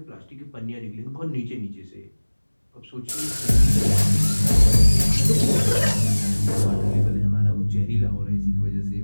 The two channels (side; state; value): both; inverted; correlation -1.00